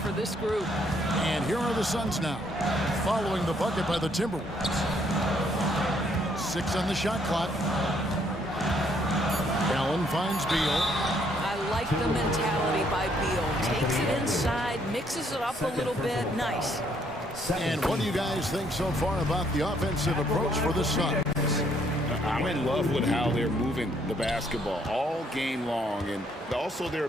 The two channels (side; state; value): both; normal; correlation 0.69